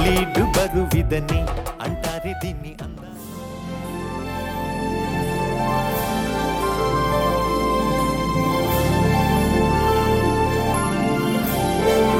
బరువిదని అంటారే దీన్ని అందా.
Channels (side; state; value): both; identical; correlation 1.00